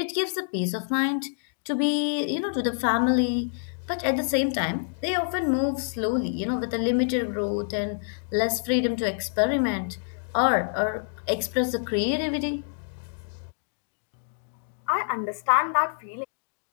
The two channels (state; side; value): silent; right; digital silence